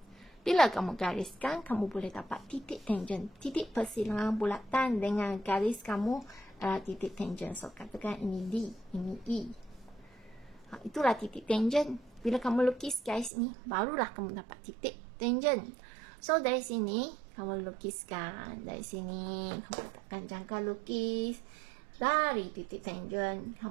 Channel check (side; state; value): left; drops out; at 13.3 s